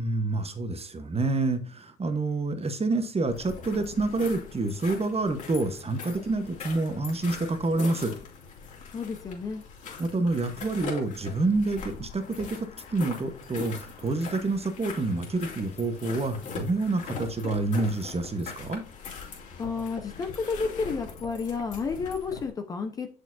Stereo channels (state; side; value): normal; both; correlation 0.67